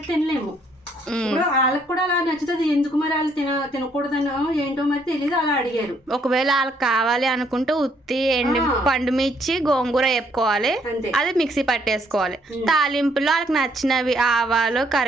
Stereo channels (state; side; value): normal; both; correlation 0.69